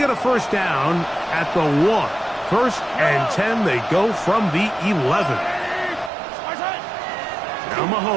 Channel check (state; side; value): drops out; left; at 6.1 s